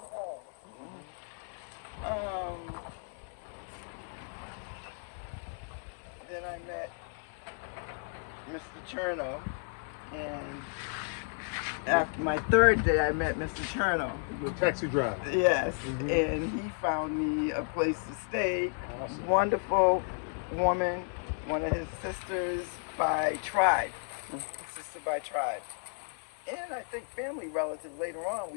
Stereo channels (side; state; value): right; silent; 56 dB below the other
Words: home. Then I met Mr. Cherno, and after my third day, I met Mr. Cherno. The taxi driver. Yes, and he found me a place to stay. Awesome. Wonderful woman, one of his sisters by tribe, sister by tribe. And I think family relative later on,